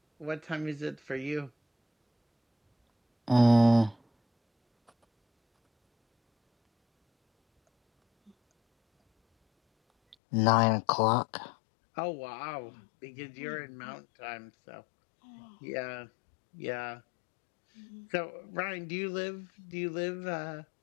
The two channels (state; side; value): drops out; right; at 10.2 s